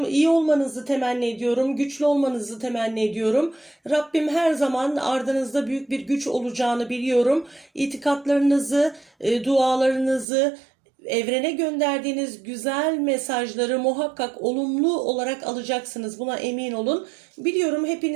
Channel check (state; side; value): drops out; left; at 10.2 s